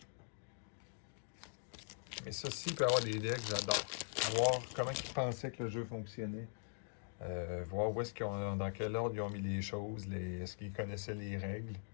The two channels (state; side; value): silent; right; digital silence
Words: Mais ceci peut avoir des decks, j'adore. Voir comment ils pensaient que le jeu fonctionnait. Voir où est-ce qu'ils ont, dans quel ordre ils ont mis les choses, est-ce qu'ils connaissaient les règles.